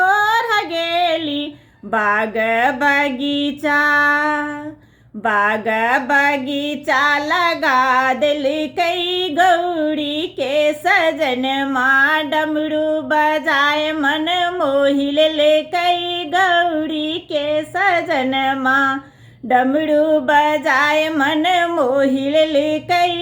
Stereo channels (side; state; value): both; identical; correlation 1.00